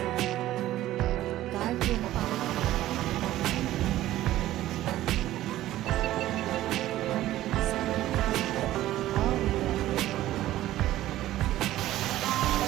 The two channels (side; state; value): left; quieter; 14.6 dB